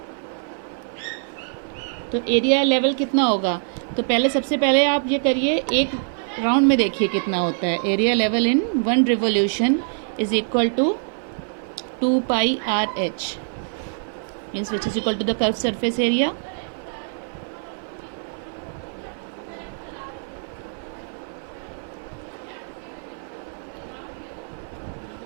तो एरिया लेवल कितना होगा, तो पहले सबसे पहले आप ये करिए, एक राउंड में देखिए कितना होता है। Area level in 1 revolution is equal to 2πRh, means which is equal to the curve surface area.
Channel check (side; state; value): left; silent; 56 dB below the other